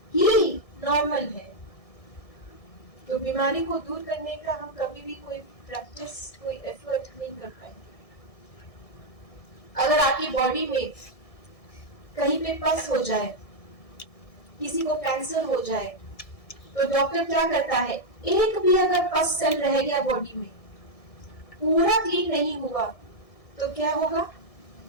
ही नॉर्मल है। तो बीमारी को दूर करने का हम कभी भी कोई प्रैक्टिस, कोई एफर्ट नहीं कर पाएंगे। अगर आपकी बॉडी में कहीं पे पस हो जाए, किसी को कैंसर हो जाए, तो डॉक्टर क्या करता है, एक भी अगर पस सेल रह गया बॉडी में, पूरा क्लीन नहीं हुआ, तो क्या होगा,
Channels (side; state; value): right; late; 1.6 ms